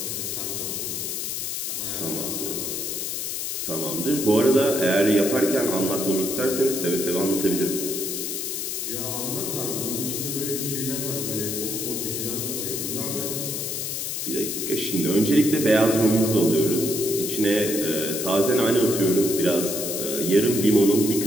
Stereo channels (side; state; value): left; noise; hiss, 3 dB below the sound